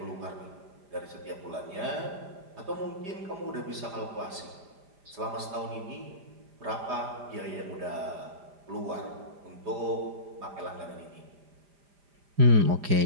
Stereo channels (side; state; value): left; late; 4.9 ms